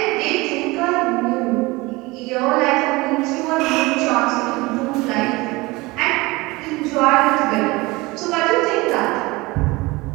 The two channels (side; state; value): left; quieter; 22.5 dB